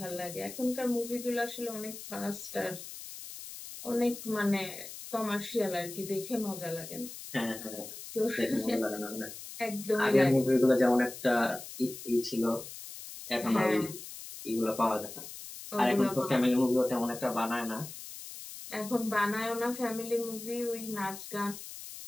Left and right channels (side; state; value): left; noise; hiss, 12 dB below the sound